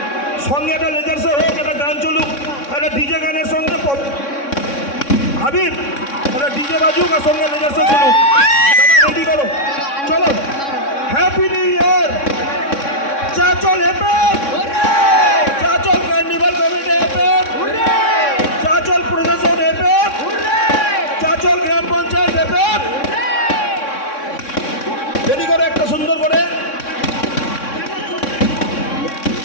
সঙ্গে একটা লেজার শো হোক, একটা গান চলুক, একটা ডিজে গানের সঙ্গে হাবিব একটা ডিজে বাজুক আর সঙ্গে লেজার শো চলুক। রেডি করো, চলো। Happy new year. Chanchal happy, Chanchal carnival committee happy, Chanchal প্রশাসন হেপে, চাচল গ্রাম পঞ্চায়েত হেপে। রেডি করে একটা সুন্দর করে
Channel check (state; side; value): late; right; 3.6 ms